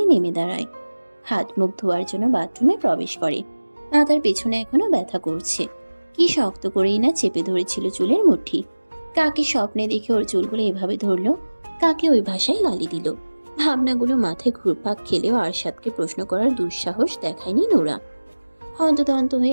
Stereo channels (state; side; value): inverted; both; correlation -1.00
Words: নেমে দাঁড়ায়। হাত মুখ ধোয়ার জন্য বাথরুমে প্রবেশ করে। মাথার পেছনে এখনো ব্যথা করছে। কি শক্ত করেই না চেপে ধরেছিল চুলের মুঠি। কাকে স্বপ্নে দেখে ওর চুলগুলো এভাবে ধরলো, কাকে ওই ভাষায় গালি দিল। ভাবনাগুলো মাথায় ঘুরপাক খেলেও আরশাদকে প্রশ্ন করার দুঃসাহস দেখায়নি নোরা। হন্তদন্ত